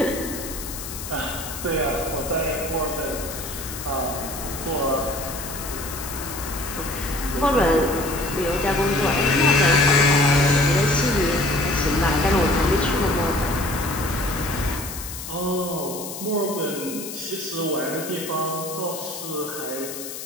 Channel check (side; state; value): left; noise; hiss, 9 dB below the sound